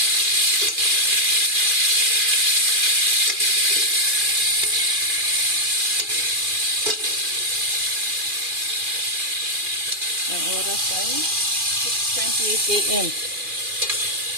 Ang oras ay 6:28 AM.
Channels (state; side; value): late; left; 2.4 ms